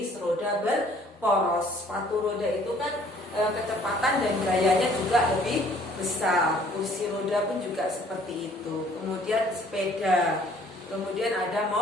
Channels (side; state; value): both; normal; correlation 0.58